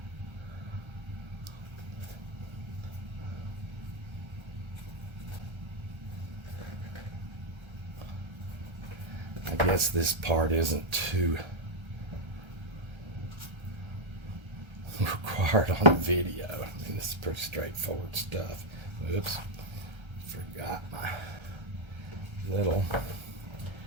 I guess this part isn't too required on the video. I mean, this is pretty straightforward stuff. Oops, forgot my little,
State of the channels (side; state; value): left; late; 1.3 ms